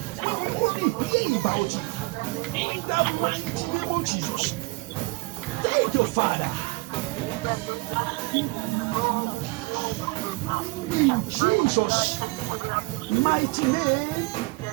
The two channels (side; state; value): left; quieter; 25.0 dB